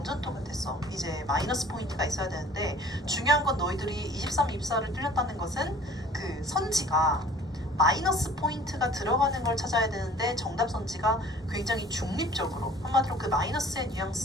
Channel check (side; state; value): both; normal; correlation 0.49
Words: 똑같았어. 이제 마이너스 포인트가 있어야 되는데 중요한 건 너희들이 23, 24를 틀렸다는 것은 그 선지가 마이너스 포인트가 들어가는 걸 찾아야 되는데 정답 선지가 굉장히 중립적으로 한마디로 그 마이너스의